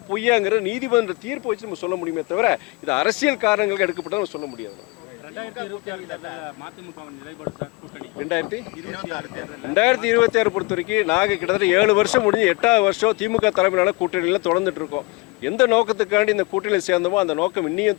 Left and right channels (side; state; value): right; quieter; 24.6 dB